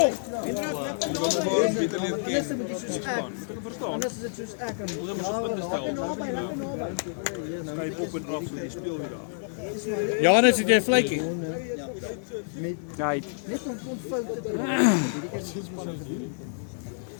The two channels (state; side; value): silent; right; 59 dB below the other